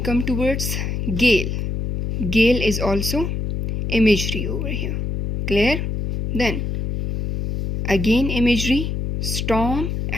towards gale. Gale is also imagery over here. Clear? Then again imagery, storm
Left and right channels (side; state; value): left; noise; hum, 2 dB below the sound